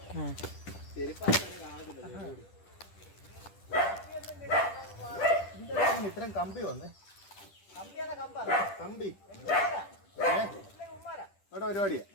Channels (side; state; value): right; late; 10 ms